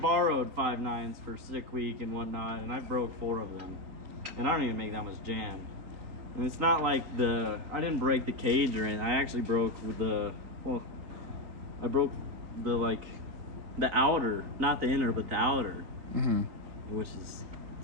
borrowed 5.9s for sick week and whatnot, and I broke 4 of them, and I don't even make that much jam. And it's not like I didn't break the cage or anything. I actually broke with I broke the outer, not the inner, but the outer, Mm-hmm. which is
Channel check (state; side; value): late; left; 3.8 ms